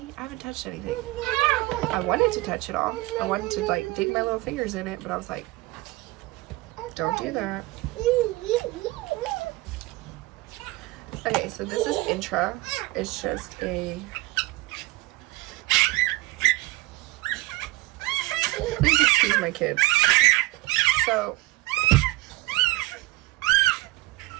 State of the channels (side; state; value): left; quieter; 20.2 dB